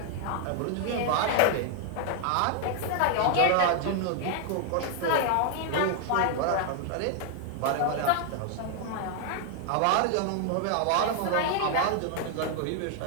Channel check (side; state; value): both; different; correlation 0.00